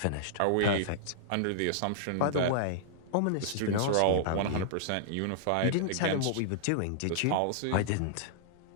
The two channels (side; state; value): both; different; correlation -0.01